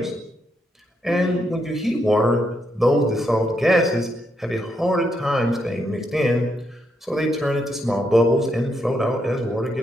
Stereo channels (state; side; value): normal; both; correlation 0.79